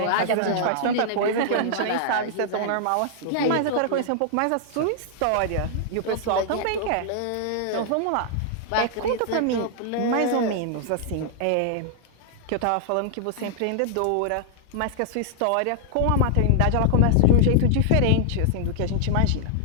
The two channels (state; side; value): different; both; correlation -0.01